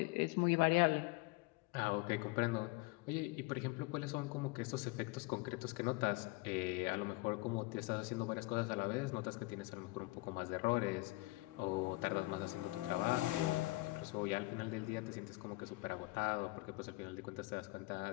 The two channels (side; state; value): right; quieter; 22.7 dB